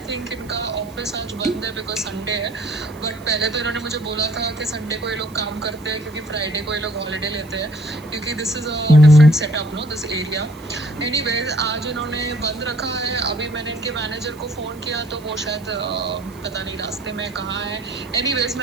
थिंक इनका ऑफिस आज बंद है बिकॉज संडे है। बट पहले तो इन्होंने मुझे बोला था कि संडे को ये लोग काम करते हैं क्योंकि फ्राइडे को ये लोग हॉलीडे लेते हैं, क्योंकि this is a different setup no this area. Anyways आज इन्होंने बंद रखा है। अभी मैंने इनके मैनेजर को फ़ोन किया तो वो शायद पता नहीं रास्ते में कहाँ है। एनीवेज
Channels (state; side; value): noise; right; hiss, 24 dB below the sound